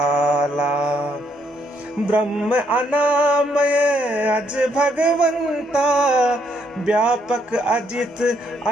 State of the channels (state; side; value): normal; both; correlation 0.72